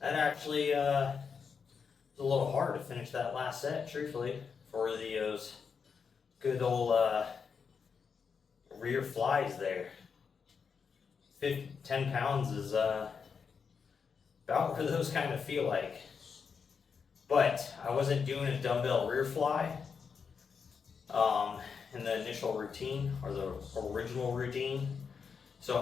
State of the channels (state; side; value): quieter; right; 6.0 dB